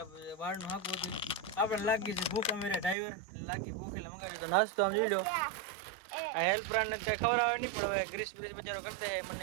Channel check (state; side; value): drops out; left; at 3.0 s